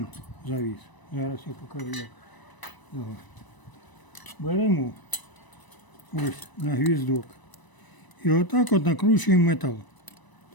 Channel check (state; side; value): late; right; 1.0 ms